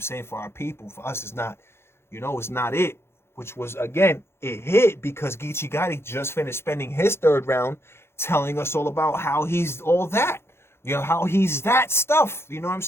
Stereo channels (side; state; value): right; late; 0.12 ms